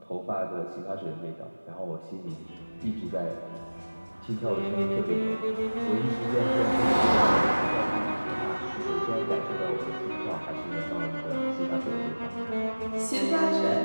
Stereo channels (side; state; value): both; inverted; correlation -1.00